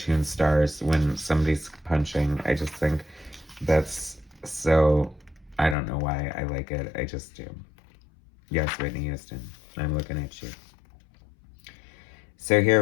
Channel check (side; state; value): right; drops out; at 5.8 s